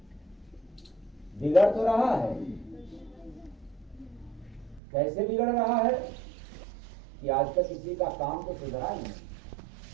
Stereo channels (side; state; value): left; drops out; at 4.8 s